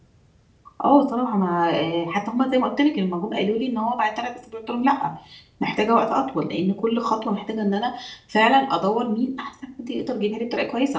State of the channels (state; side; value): identical; both; correlation 1.00